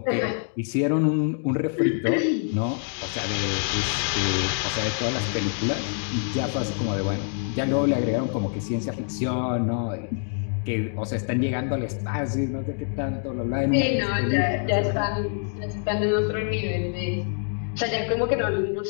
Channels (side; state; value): right; silent; 58 dB below the other